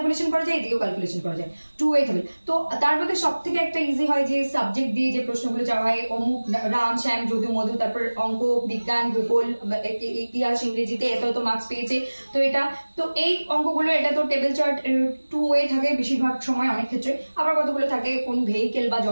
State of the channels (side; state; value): both; inverted; correlation -1.00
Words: করা যায়, এদিকেও ক্যালকুলেশন করা যায়, 2 ওয়ে টেবিল। তো তার মধ্যে সব থেকে একটা ইজি হয় যে সাবজেক্ট দিয়ে যে প্রশ্নগুলো চাওয়া হয়, অমুক রাম শ্যাম যদু মধু, তারপর অঙ্ক, বিজ্ঞান, ভূগোল, ইতিহাস, ইংরেজিতে এত মার্কস পেয়েছে, তো এটা তো এই অঙ্কগুলো এটা তো টেবিল চার্ট 2 ওয়ে থাকে বেশিরভাগ সময়, অনেক ক্ষেত্রে আবার কতগুলো থাকে কোন ভেহিকেল বা